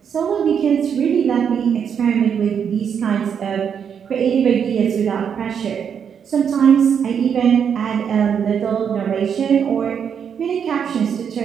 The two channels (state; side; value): quieter; left; 7.6 dB